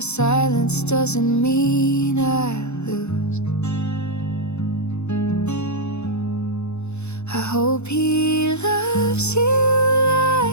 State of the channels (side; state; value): right; late; 0.81 ms